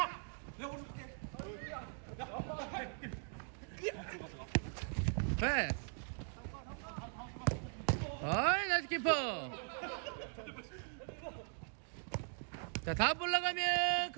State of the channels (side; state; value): left; silent; 51 dB below the other